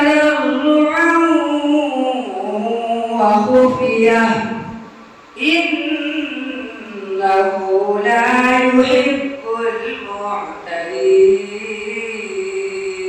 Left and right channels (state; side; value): identical; both; correlation 1.00